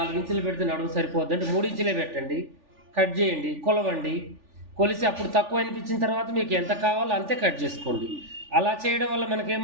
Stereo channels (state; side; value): late; left; 3.4 ms